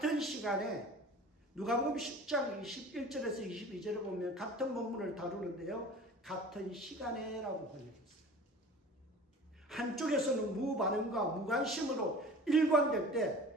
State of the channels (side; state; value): both; normal; correlation 0.41